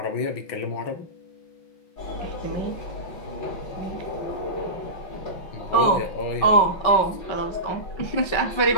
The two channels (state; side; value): late; right; 5.3 ms